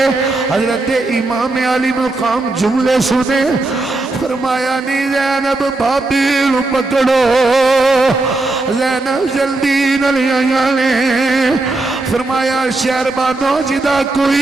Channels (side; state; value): left; quieter; 3.1 dB